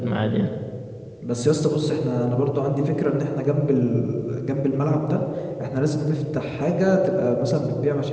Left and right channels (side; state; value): both; identical; correlation 1.00